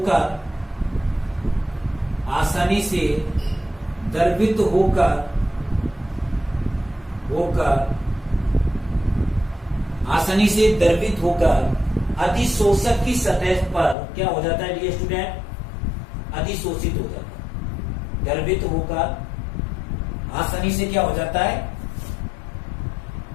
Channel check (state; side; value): drops out; right; at 14.0 s